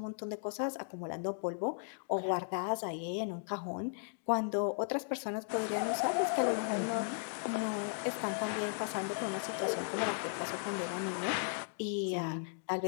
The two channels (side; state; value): right; silent; digital silence